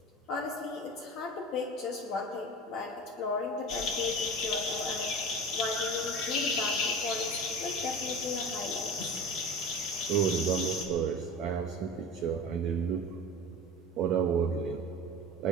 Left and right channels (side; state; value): both; normal; correlation 0.34